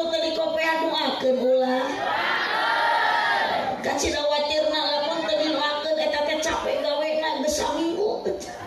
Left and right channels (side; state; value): both; identical; correlation 1.00